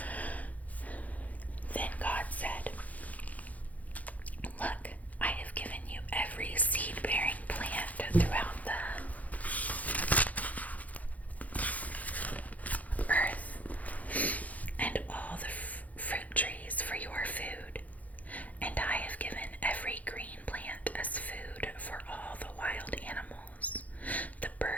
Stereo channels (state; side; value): late; right; 0.075 ms